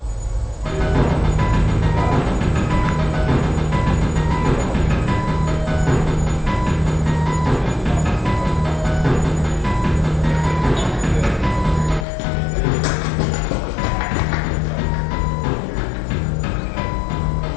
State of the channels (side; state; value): right; drops out; at 12.1 s